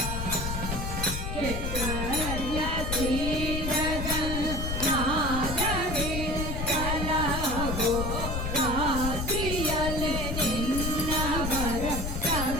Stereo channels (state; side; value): noise; left; rumble, 3 dB below the sound